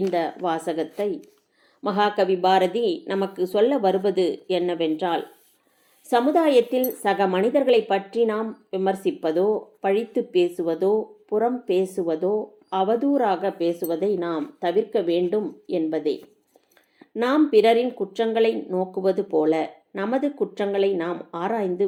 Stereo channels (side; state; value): both; identical; correlation 1.00